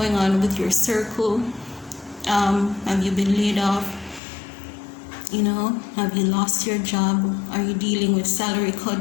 on with your circle? Have you been laid off? Have you lost your job? Are you dealing with salary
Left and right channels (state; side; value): drops out; right; at 4.2 s